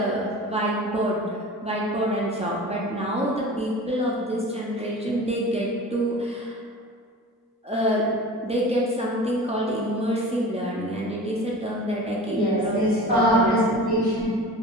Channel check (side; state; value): both; normal; correlation 0.37